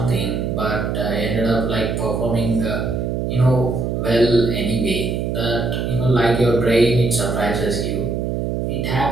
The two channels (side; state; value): right; noise; hum, 1 dB below the sound